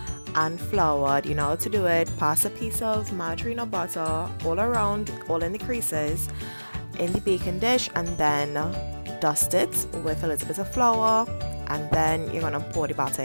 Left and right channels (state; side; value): inverted; both; correlation -1.00